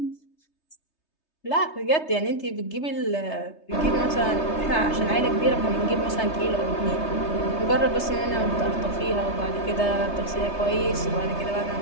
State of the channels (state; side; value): late; right; 3.3 ms